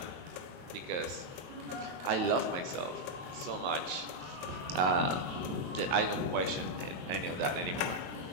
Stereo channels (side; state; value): left; late; 22 ms